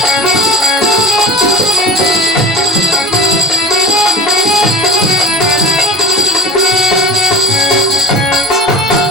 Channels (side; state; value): both; normal; correlation 0.37